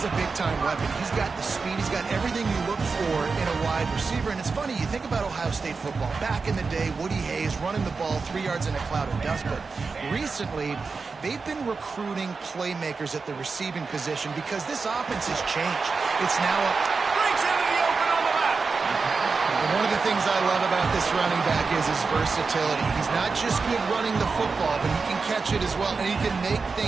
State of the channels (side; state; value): left; quieter; 4.6 dB